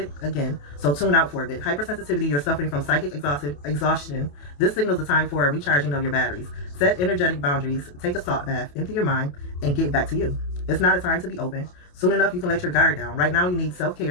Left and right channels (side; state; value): right; late; 28 ms